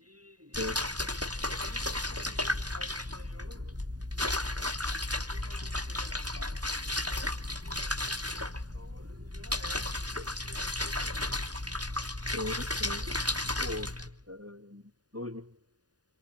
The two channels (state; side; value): late; left; 0.69 ms